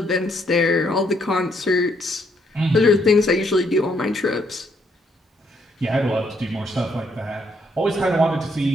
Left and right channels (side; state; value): both; normal; correlation 0.72